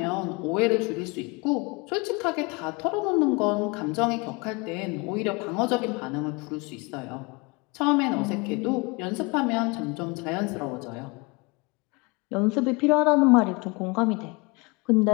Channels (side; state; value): right; quieter; 27.9 dB